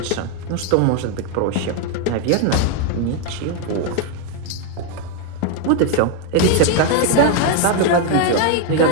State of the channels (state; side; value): different; both; correlation 0.01